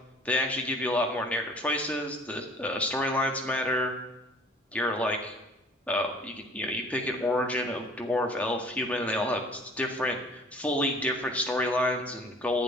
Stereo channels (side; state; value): both; normal; correlation 0.50